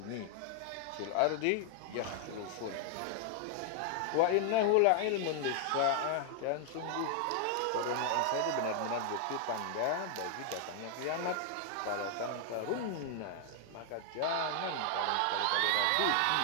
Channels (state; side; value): different; both; correlation 0.00